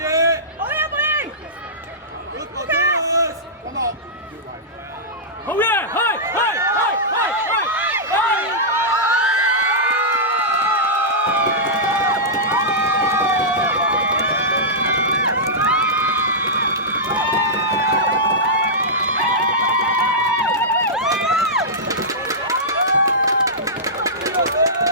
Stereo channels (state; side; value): normal; both; correlation -0.13